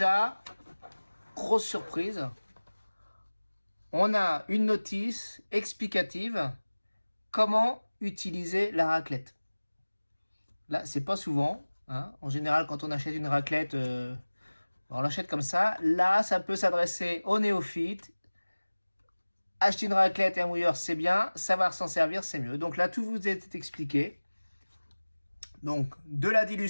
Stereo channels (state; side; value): inverted; both; correlation -1.00